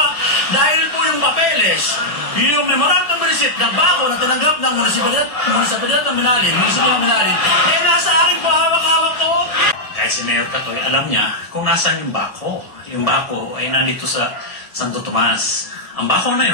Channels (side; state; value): right; late; 1.7 ms